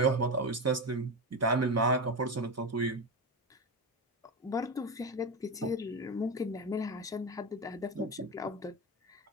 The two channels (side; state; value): both; normal; correlation 0.18